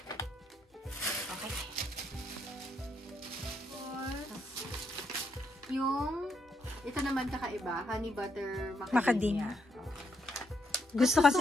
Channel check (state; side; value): normal; both; correlation 0.77